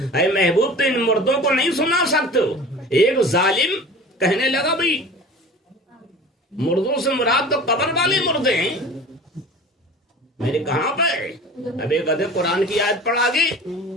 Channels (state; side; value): normal; both; correlation 0.39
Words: اے محبوب تو ان مردوں کو نہیں سنا سکتے ہو۔ ایک ظالم کہنے لگا بھئی مردوں سے مراد تو قبر والے مردے ہیں، میں نے کہاں پہ؟ اب ایک ادھر قرآن کی آیت پڑھ آگے